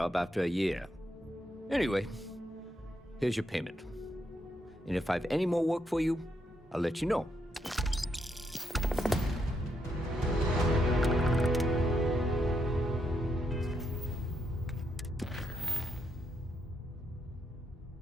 after a year. Anyway, here's your payment. And if I have any more work for you, I'll let you know.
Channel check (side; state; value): both; normal; correlation 0.79